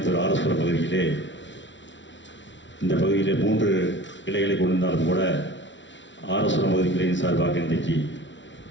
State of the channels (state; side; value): late; right; 0.54 ms